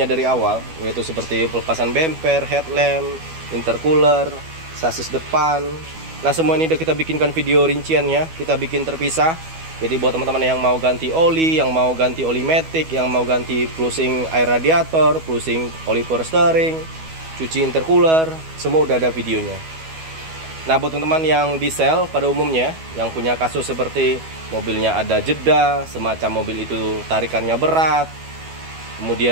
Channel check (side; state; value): left; late; 12 ms